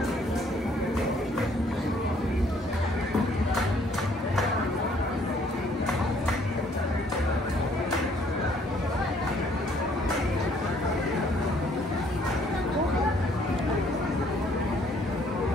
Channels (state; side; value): normal; both; correlation 0.63